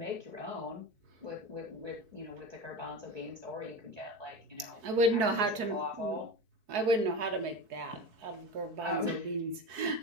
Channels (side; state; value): left; late; 4.6 ms